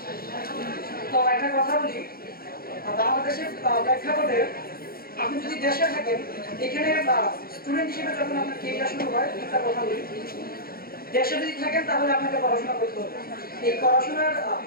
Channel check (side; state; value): right; late; 0.44 ms